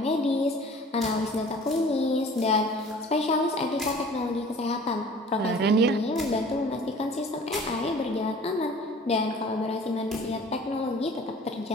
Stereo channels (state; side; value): normal; both; correlation 0.47